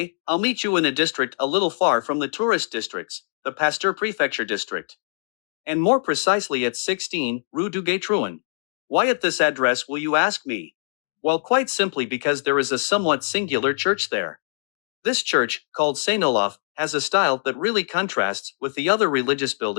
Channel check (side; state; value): right; silent; digital silence